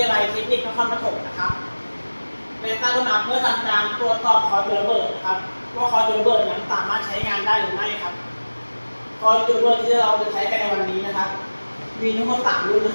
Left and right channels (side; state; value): both; inverted; correlation -1.00